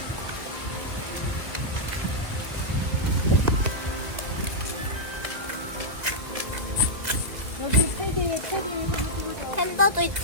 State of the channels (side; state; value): left; late; 1.8 ms